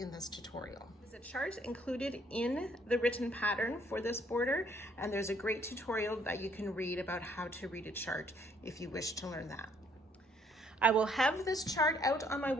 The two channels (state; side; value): normal; both; correlation 0.66